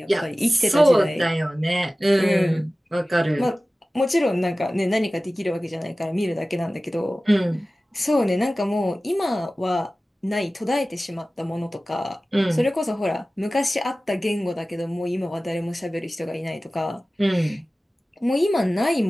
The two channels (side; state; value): both; normal; correlation 0.97